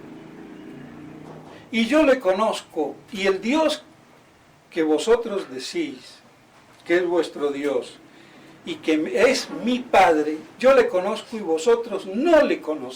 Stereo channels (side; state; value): both; identical; correlation 1.00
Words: Y yo le conozco, y el Dios que vosotros decís que es vuestro Dios y que es mi Padre, yo le conozco y vosotros no le